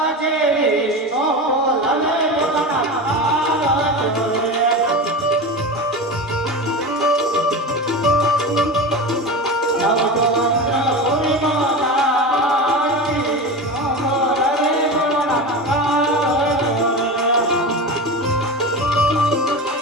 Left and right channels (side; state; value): both; normal; correlation 0.26